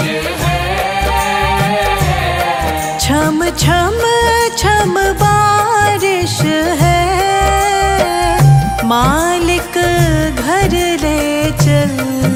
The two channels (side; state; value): both; identical; correlation 1.00